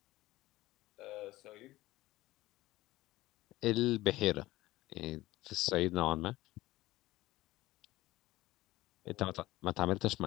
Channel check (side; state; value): right; quieter; 17.7 dB